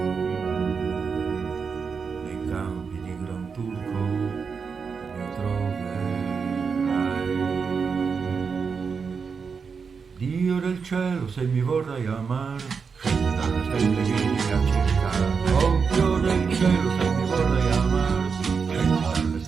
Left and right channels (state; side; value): quieter; left; 5.6 dB